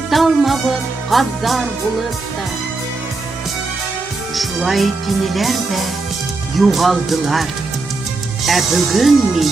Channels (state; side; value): quieter; left; 3.6 dB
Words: gazzar bulutta. Şulay tiniler de yuğaldılar. Bugün mi?